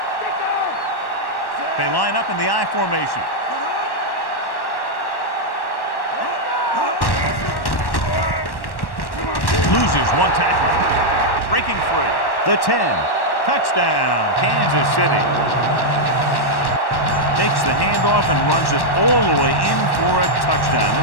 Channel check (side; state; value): right; late; 1.1 ms